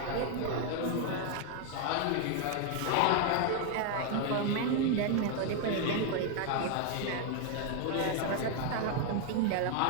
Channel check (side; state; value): both; different; correlation 0.00